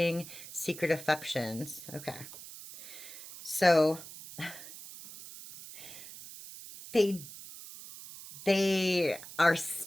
secret affections. Okay. So, they are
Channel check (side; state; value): right; noise; hiss, 14 dB below the sound